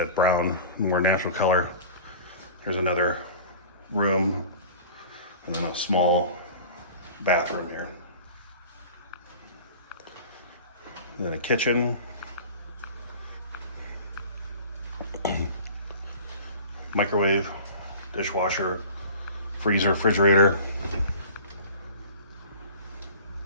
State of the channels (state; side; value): inverted; both; correlation -0.40